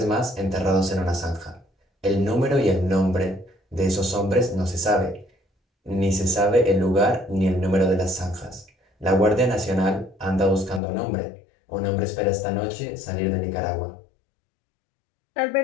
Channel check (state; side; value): drops out; right; at 10.8 s